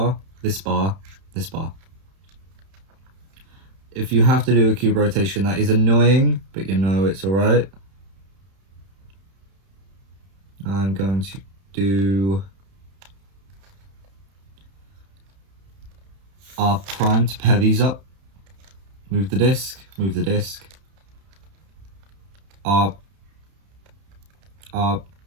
this bar, this bar. If you have to do a cube rotation, that is annoying, but you know it's alright. I'm going to do R prime to pair these up. Move the disc, R, R,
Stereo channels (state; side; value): late; left; 31 ms